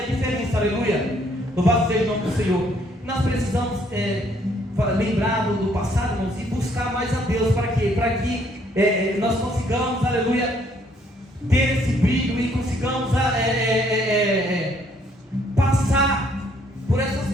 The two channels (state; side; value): normal; both; correlation 0.66